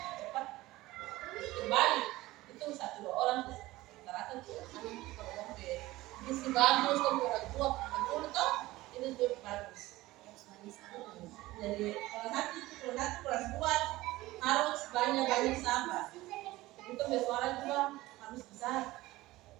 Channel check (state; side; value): quieter; left; 18.3 dB